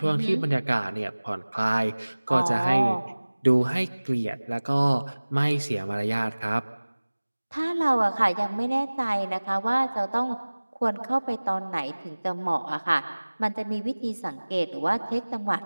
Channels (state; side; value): inverted; both; correlation -1.00